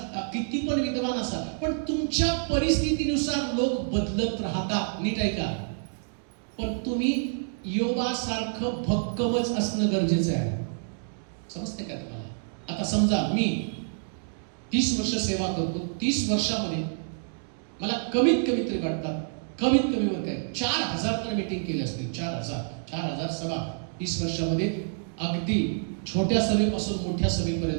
किती पण विद्वान असाल, पण तुमच्या परिस्थितीनुसार लोक बदलत राहतात. नीट ऐका. पण तुम्ही योबासारखं भक्कमच असणं गरजेचं आहे. समजते का तुम्हाला? आता समजा मी 30 वर्ष सेवा करतो. 30 वर्षामध्ये मला कमीत कमी तरी वाटतात, कमीत कमी वर काय 4000 तर मीटिंग केली असतील. 4000 सभा 30 वर्षामध्ये, अगदी छोट्या सभेपासून मोठ्या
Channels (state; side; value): silent; left; digital silence